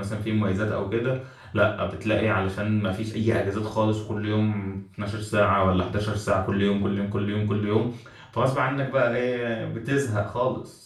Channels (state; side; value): identical; both; correlation 1.00